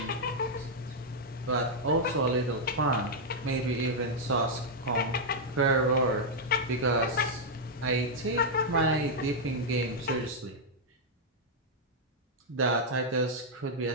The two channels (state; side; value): normal; both; correlation -0.03